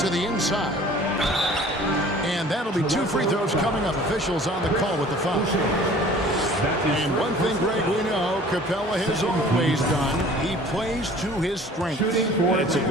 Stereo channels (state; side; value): normal; both; correlation 0.49